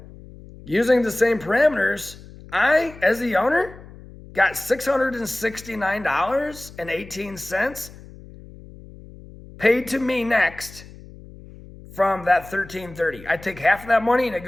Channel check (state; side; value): noise; left; hum, 18 dB below the sound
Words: using the same parameters, I, as the owner, got $669.18 paid to me next from that $1,330. I take half of that money and it